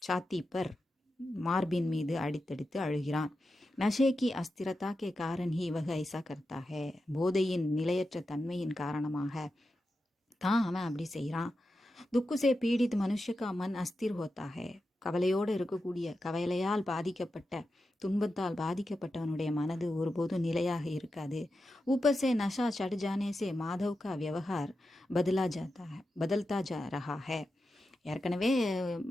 சாத்தி பர் மார்பின் மீது அடித்தடித்து அழுகிறான். நஷேக்கி அஸ்திரதா கே காரன் ஹி வக ஐசா கர்த்தாக. போதையின் நிலையற்ற தன்மையின் காரணமாக தான் அவன் அப்படி செய்கிறான். துக்குசே பீடித் மனுஷக்கா மன் அஸ்திர் ஹோத்தாக. கவலையோடு இருக்கக்கூடிய, கவலையால் பாதிக்கப்பட்ட, துன்பத்தால் பாதிக்கப்பட்டவனுடைய மனது ஒருபோதும் நிலையாக இருக்காது. ஊப்பர் சே நஷா சட் ஜானே சே மாதவ் கா வியவஹார் பதல்தா ஜா ரஹா ஹே. ஏற்கனவே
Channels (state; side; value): normal; both; correlation 0.90